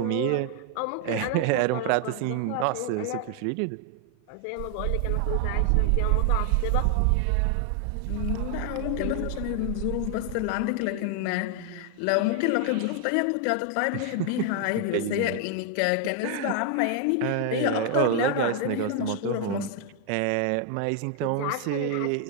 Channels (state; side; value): different; both; correlation 0.00